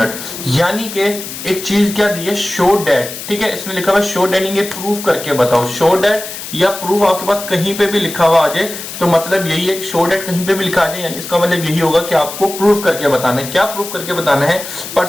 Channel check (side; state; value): left; noise; hiss, 10 dB below the sound